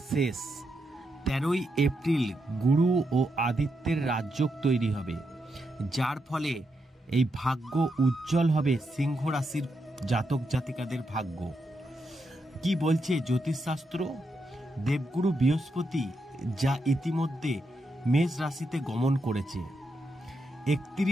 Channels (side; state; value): both; normal; correlation 0.83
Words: শেষ 13ই এপ্রিল গুরু ও আদিত্যের রাজযোগ তৈরি হবে, যার ফলে এই ভাগ্য উজ্জ্বল হবে সিংহ রাশির জাতক জাতিকাদের ভাগ্য। কি বলছে জ্যোতিষশাস্ত্র? দেবগুরু বৃহস্পতি যা ইতিমধ্যে মেষ রাশিতে গমন করেছে,